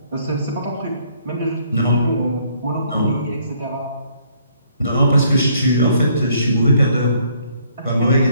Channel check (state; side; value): inverted; both; correlation -0.66